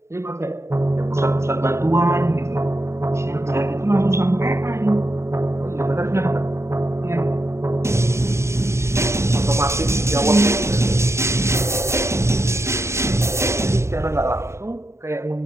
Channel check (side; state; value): left; late; 0.13 ms